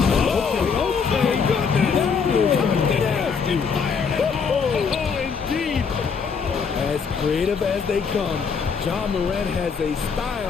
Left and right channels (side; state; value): right; quieter; 5.9 dB